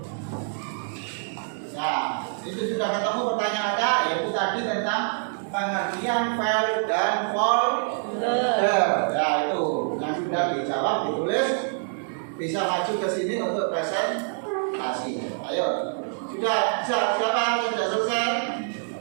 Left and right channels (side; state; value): left; silent; digital silence